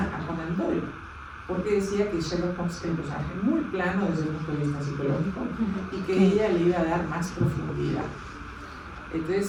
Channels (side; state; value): both; identical; correlation 1.00